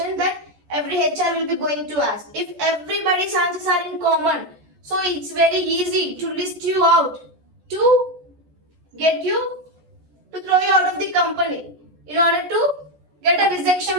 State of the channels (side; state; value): left; late; 14 ms